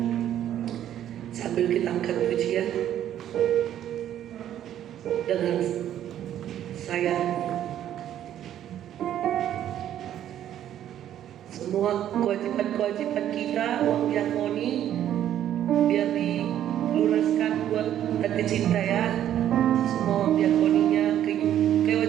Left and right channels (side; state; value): left; quieter; 11.1 dB